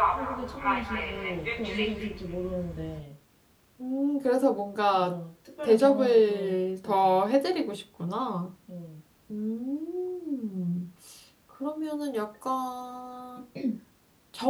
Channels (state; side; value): identical; both; correlation 1.00